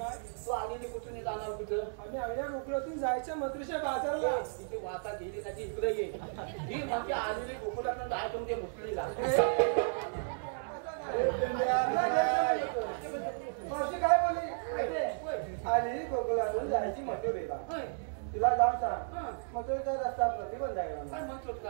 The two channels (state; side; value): silent; left; digital silence